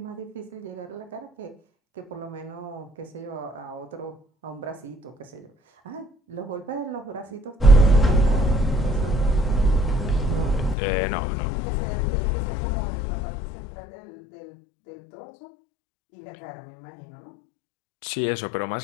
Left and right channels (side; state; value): right; drops out; at 10.8 s